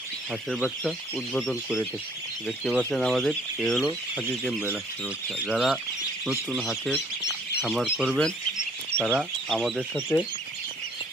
হাঁসের বাচ্চা উদ্বোধন করে থাকি। দেখতে পাচ্ছেন আমাদের এ হলো খাকি ক্যাম্বেল হাঁসের বাচ্চা। যারা নতুন হাঁসের খামার করবেন তারা আমাদের সাথে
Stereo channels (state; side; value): normal; both; correlation 0.60